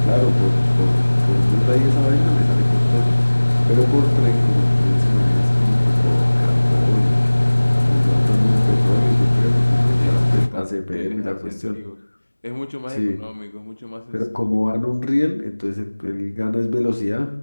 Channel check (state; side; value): inverted; both; correlation -1.00